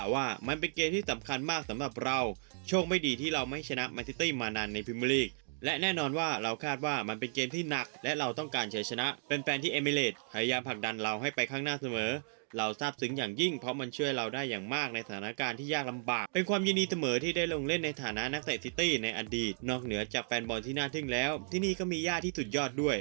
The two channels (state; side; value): silent; left; digital silence